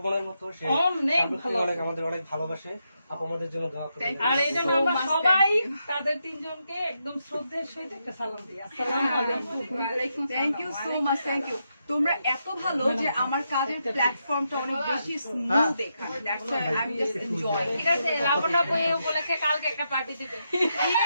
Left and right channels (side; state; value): both; inverted; correlation -0.83